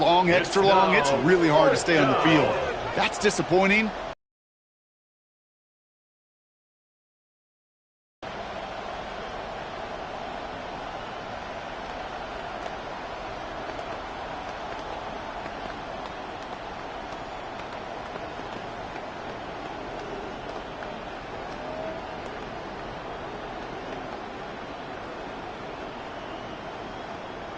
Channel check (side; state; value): both; identical; correlation 1.00